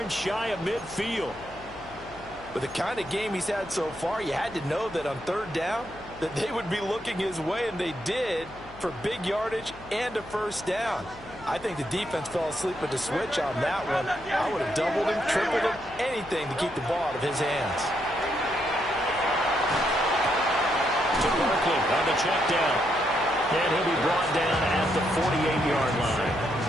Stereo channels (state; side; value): noise; left; hum, 20 dB below the sound